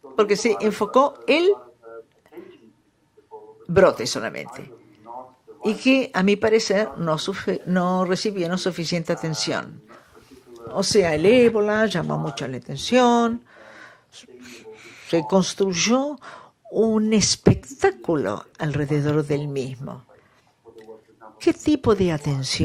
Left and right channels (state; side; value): identical; both; correlation 1.00